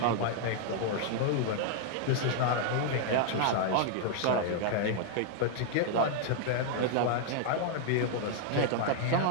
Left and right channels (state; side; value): different; both; correlation -0.01